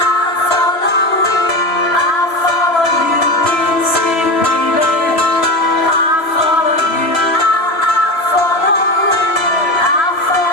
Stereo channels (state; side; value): late; right; 3.0 ms